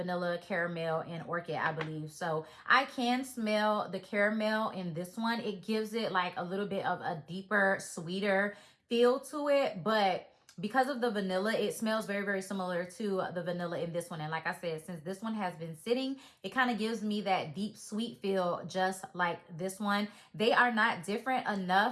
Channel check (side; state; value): both; identical; correlation 1.00